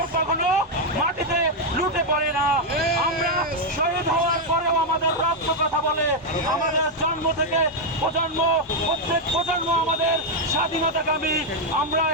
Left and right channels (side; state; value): both; normal; correlation 0.02